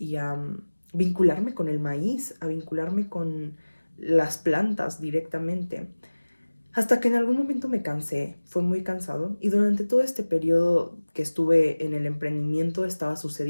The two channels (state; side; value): inverted; both; correlation -1.00